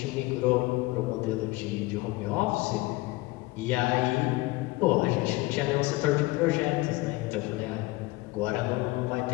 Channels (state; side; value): quieter; right; 21.1 dB